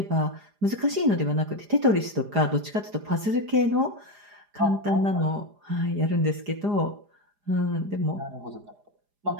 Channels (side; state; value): left; late; 4.9 ms